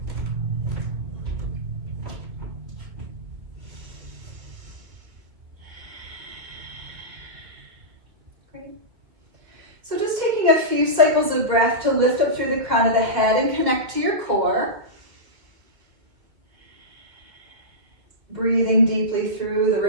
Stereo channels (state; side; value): late; left; 2.3 ms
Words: Great. So just taking a few cycles of breath to lift up through the crown of the head and connect to your core. Breathing deeply through the